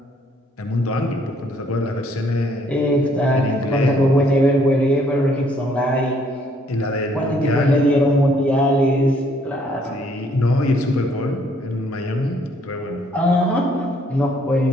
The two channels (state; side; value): normal; both; correlation 0.66